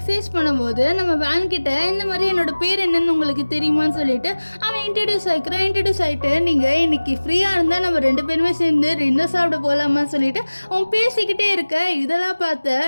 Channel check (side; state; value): both; inverted; correlation -1.00